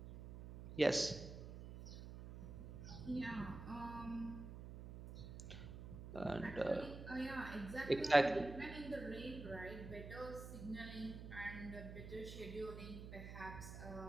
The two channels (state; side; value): noise; right; hum, 10 dB below the sound